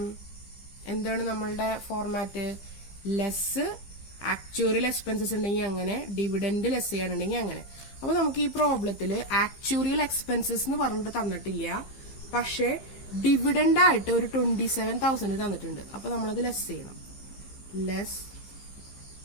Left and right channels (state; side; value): late; right; 15 ms